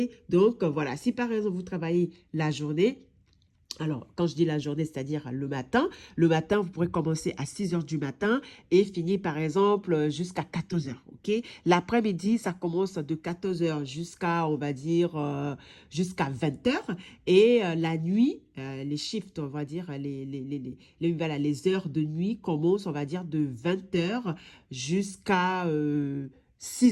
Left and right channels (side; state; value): both; identical; correlation 1.00